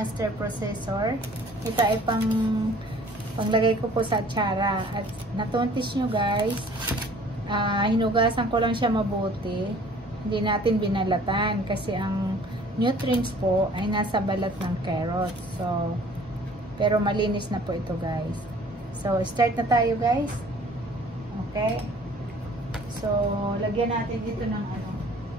processor. Ito ay panglagay ko po sa atsara. At natuntis nyo guys, hinugasan ko lang siya mabuti. Hindi natin binalatan kasi ang nutrients po ay nasa balat ng carrot. So, pero malinis na po ito guys. So, start na tayo guys. Okay. So, lagyan natin dito ng ano,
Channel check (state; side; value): normal; both; correlation 0.52